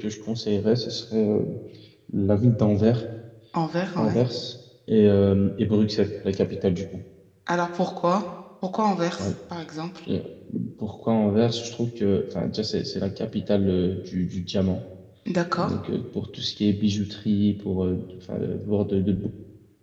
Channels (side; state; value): both; identical; correlation 1.00